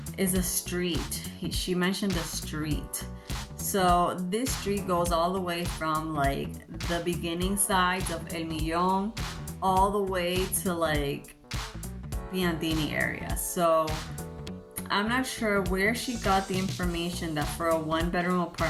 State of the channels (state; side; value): identical; both; correlation 1.00